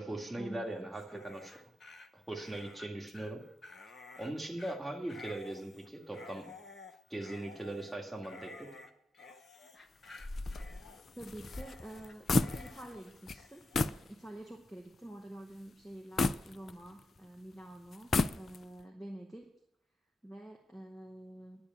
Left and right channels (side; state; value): both; normal; correlation 0.87